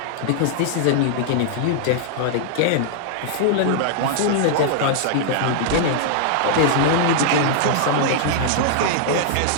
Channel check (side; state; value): both; different; correlation -0.01